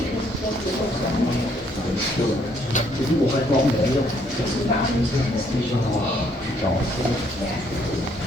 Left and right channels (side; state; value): both; normal; correlation 0.67